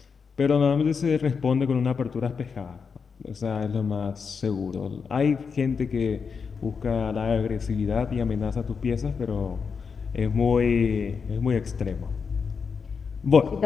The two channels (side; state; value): right; quieter; 5.7 dB